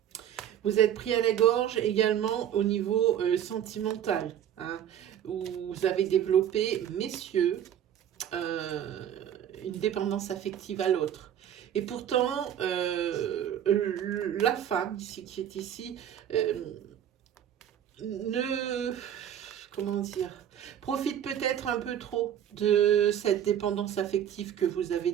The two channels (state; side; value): quieter; left; 10.1 dB